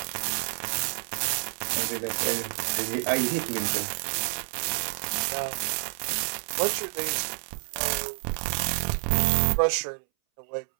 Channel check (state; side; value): silent; left; 59 dB below the other